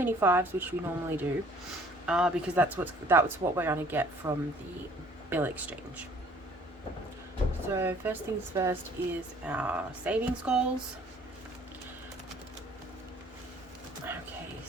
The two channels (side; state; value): both; normal; correlation 0.56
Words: fives, which we normally do, because that's what we're going to get from the bill exchange. So first things first is our savings goals. Okay,